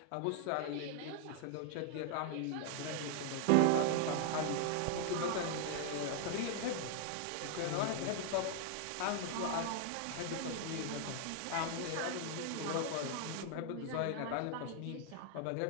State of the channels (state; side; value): different; both; correlation 0.00